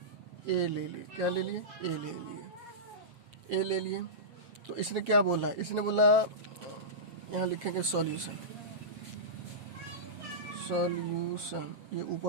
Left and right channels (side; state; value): left; late; 7.5 ms